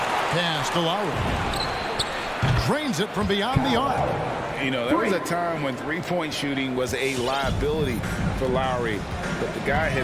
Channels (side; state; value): both; identical; correlation 1.00